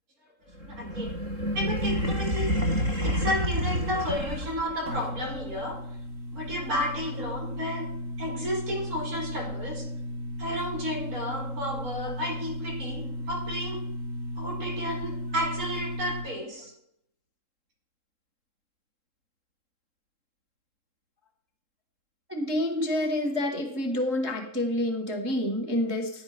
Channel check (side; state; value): left; late; 3.7 ms